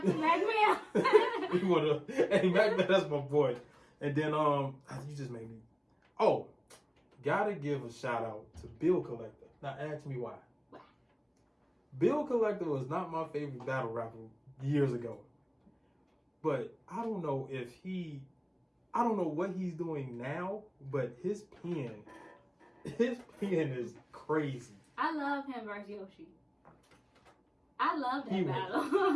to Mac Mill. He one of those. Hey, Mac Mill, that's my boy. And then you just made me. Oh, gotta give a shout out to Bill Collector. Now ask me why. Bill Collector was not my favorite battle rapper years ago. But I don't know what he's doing now, but his pen is crazy. I love him versus Yoshi. I love that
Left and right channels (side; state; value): both; identical; correlation 1.00